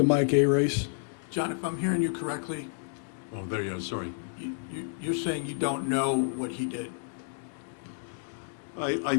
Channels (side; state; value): right; silent; digital silence